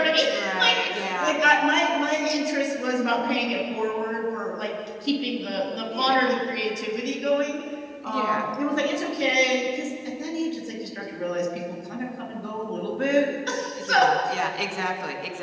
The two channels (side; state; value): both; identical; correlation 1.00